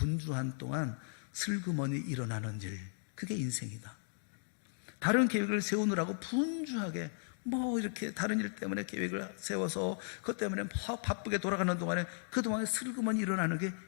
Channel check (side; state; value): right; silent; digital silence